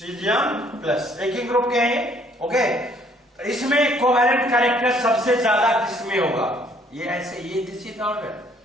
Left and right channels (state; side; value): normal; both; correlation 0.62